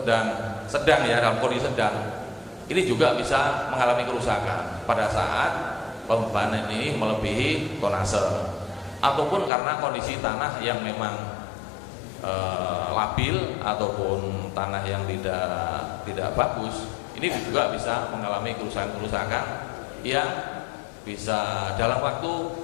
ya, dalam kondisi sedang, ini juga bisa mengalami kerusakan pada saat pembebanan ini melebihi tonase, ataupun karena kondisi tanah yang memang labil ataupun tanah yang tidak bagus. Ini juga bisa mengalami kerusakan yang bisa dalam waktu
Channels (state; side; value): drops out; right; at 9.5 s